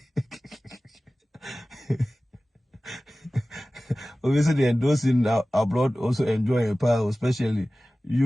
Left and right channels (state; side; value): normal; both; correlation 0.97